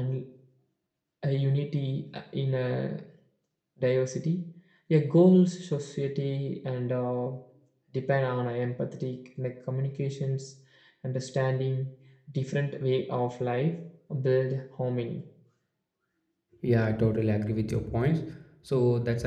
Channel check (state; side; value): identical; both; correlation 1.00